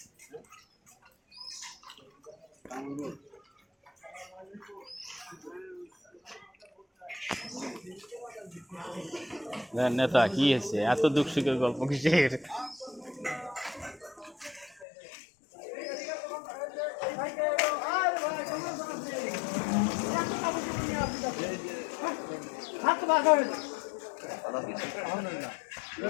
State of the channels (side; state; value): right; drops out; at 14.9 s